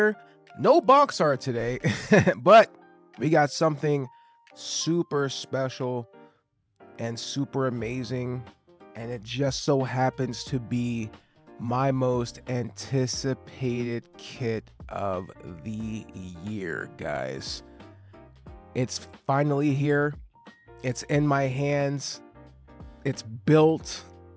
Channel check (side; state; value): both; identical; correlation 1.00